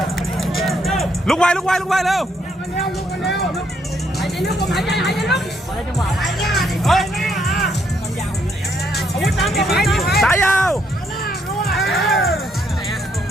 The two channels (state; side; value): normal; both; correlation 0.72